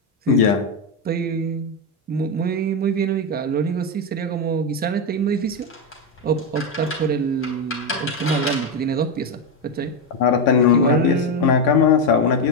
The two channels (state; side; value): normal; both; correlation 0.08